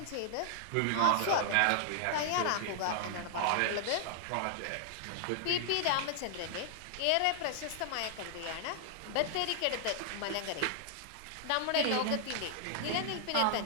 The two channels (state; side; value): different; both; correlation -0.01